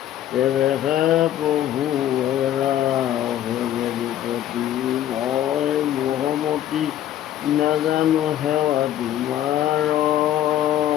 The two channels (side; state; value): right; quieter; 11.8 dB